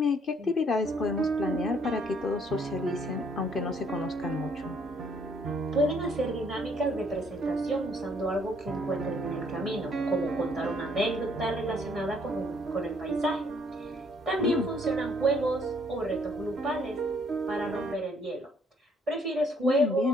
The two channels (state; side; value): normal; both; correlation 0.65